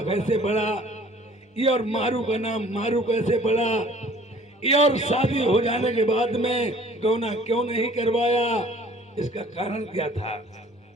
कैसे पड़ा ये और मारू का नाम मारू कैसे पड़ा ये और शादी हो जाने के बाद में गौना क्यों नहीं करवाया इसका कारण क्या था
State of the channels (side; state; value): both; normal; correlation 0.52